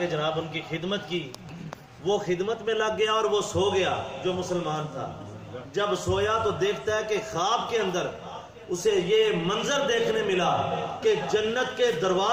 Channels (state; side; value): identical; both; correlation 1.00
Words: جناب ان کی خدمت کی، وہ خدمت میں لگ گیا اور وہ سو گیا جو مسلمان تھا۔ جب سویا تو دیکھتا ہے کہ خواب کے اندر اسے یہ منظر دیکھنے ملا کہ جنت کے